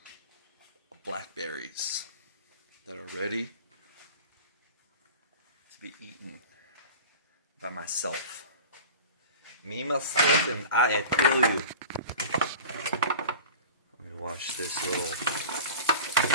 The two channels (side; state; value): both; inverted; correlation -0.36